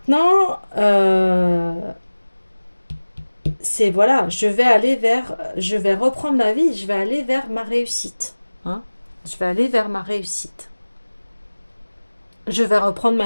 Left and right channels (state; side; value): inverted; both; correlation -1.00